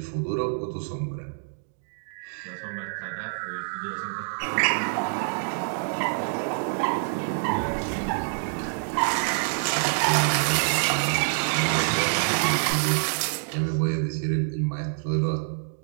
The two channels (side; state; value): left; silent; digital silence